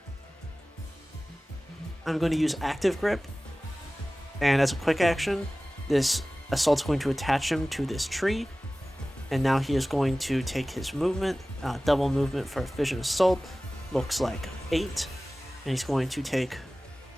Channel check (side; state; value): both; normal; correlation 0.97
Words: I'm going to use Active Grip, and as a quick action, this Assault's going to attach him to this tree, and now he is going to take his movement, double movement for Fission Assault, looks like 8, and he's going to take